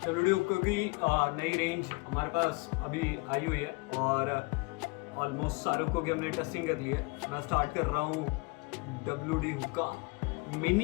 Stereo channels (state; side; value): quieter; right; 28.2 dB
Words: WD हुक्का की नई रेंज हमारे पास अभी आई हुई है और ऑलमोस्ट सारे हुक्कों की हमने टेस्टिंग कर ली है। मैं स्टार्ट कर रहा हूँ WD हुक्का